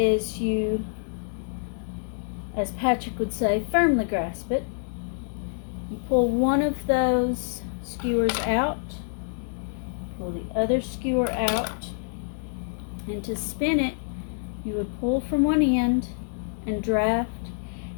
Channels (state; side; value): silent; right; digital silence